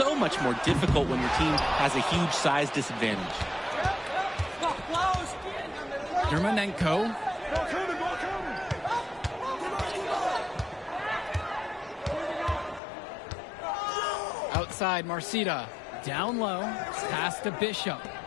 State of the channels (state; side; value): drops out; right; at 12.8 s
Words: much more difficult when your team has a huge size disadvantage. Dermonenko. Outside, Marcida. Down low. Pass to Bishop.